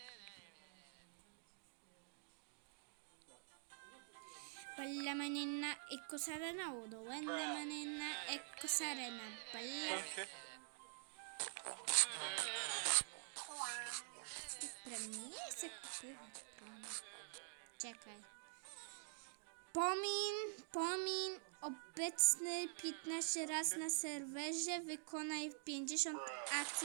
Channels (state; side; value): silent; left; digital silence